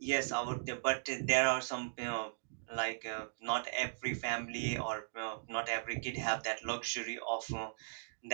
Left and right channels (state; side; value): silent; left; digital silence